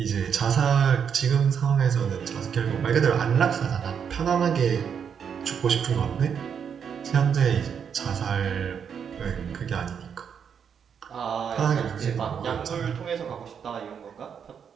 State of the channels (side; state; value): left; quieter; 7.4 dB